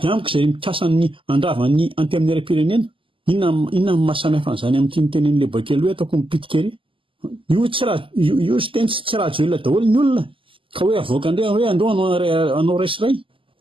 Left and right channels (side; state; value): left; late; 0.25 ms